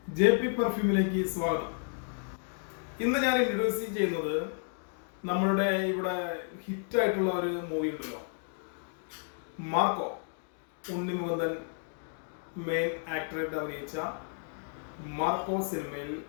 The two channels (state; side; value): silent; right; 56 dB below the other